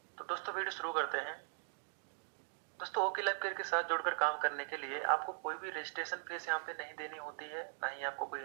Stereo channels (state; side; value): silent; left; digital silence